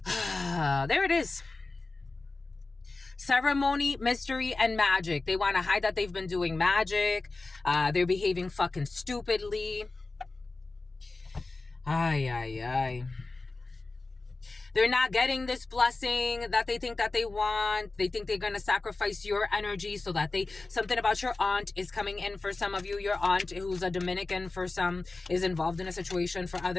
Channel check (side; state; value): right; quieter; 3.5 dB